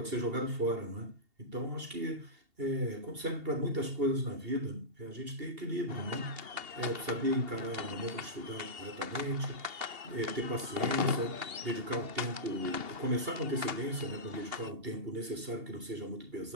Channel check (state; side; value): late; left; 2.8 ms